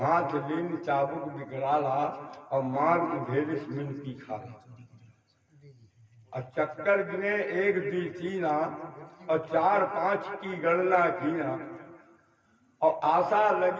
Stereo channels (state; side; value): identical; both; correlation 1.00